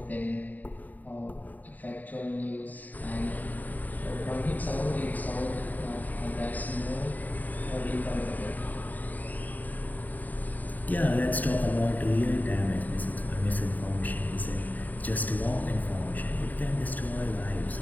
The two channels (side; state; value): right; late; 0.082 ms